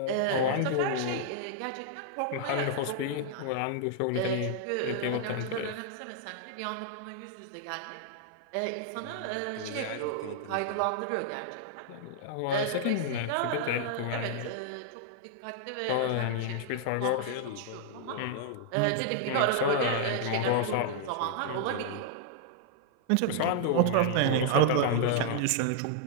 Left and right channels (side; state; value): both; different; correlation -0.01